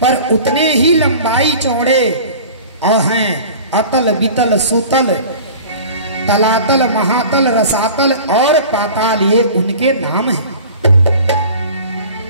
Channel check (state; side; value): inverted; both; correlation -0.41